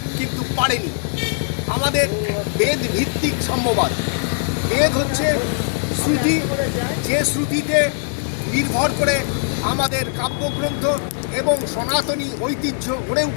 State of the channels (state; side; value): silent; right; digital silence